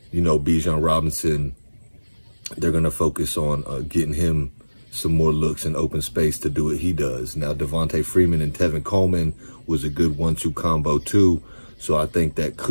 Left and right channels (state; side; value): inverted; both; correlation -1.00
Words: you know, Bijan Robinson, they're going to focus on getting him some more looks in open space to do what he does. Now, Devontae Freeman and Tevin Coleman was a good 1-2 combo too. So I think that